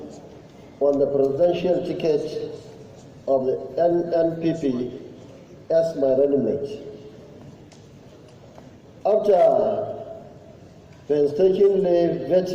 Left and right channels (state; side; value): identical; both; correlation 1.00